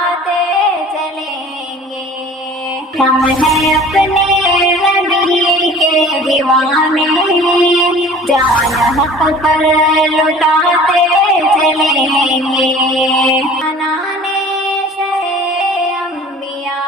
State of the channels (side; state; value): both; normal; correlation 0.45